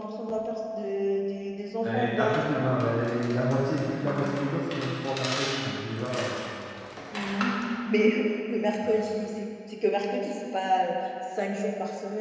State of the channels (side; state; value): both; identical; correlation 1.00